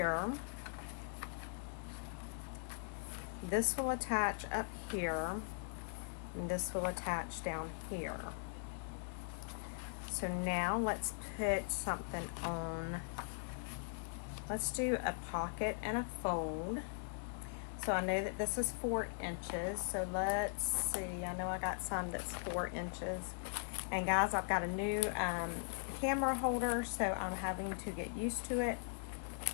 This will attach up here, and this will attach down here. So now let's put something on. Let's do a pocket and a fold. So I know that this is 4 inches, so let's see. I know I got some that's 4 inches. And guys, I've got a new camera holder, so I'm having to get used to it.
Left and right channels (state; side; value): silent; right; 51 dB below the other